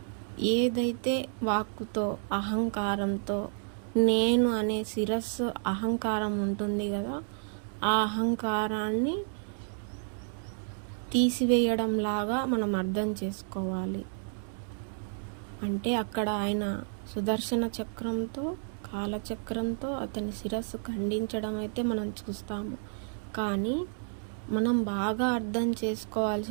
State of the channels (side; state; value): left; silent; digital silence